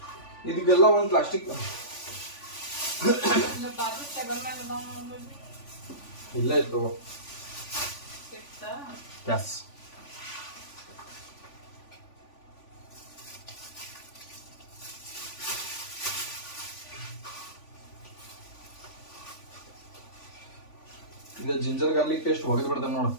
ಇದಕ್ಕೆಲ್ಲ ಒಂದು ಪ್ಲಾಸ್ಟಿಕ್ ಇಲ್ಲ ಇತ್ತು. ಎಸ್, ಇದು ಜಿಂಜರ್ ಗಾರ್ಲಿಕ್ ಪೇಸ್ಟ್ ಒಗೆದು ಬಿಡ್ತೇನೆ ನೋಡು,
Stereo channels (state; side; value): late; right; 3.5 ms